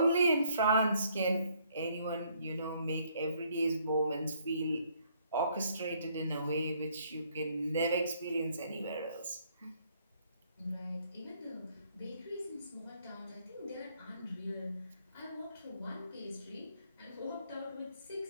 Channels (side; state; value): both; inverted; correlation -0.67